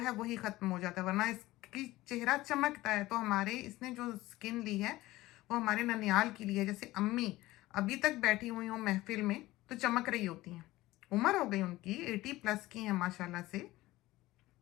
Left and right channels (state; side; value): quieter; right; 17.8 dB